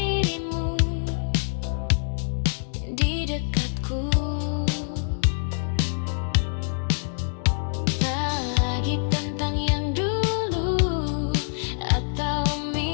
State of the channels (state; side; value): silent; right; digital silence